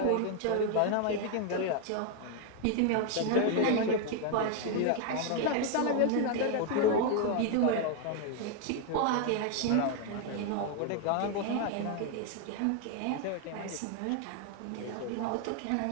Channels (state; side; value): different; both; correlation 0.00